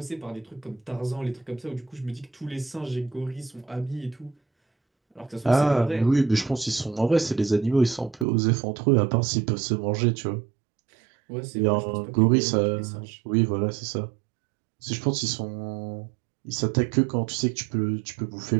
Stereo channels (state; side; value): drops out; left; at 8.2 s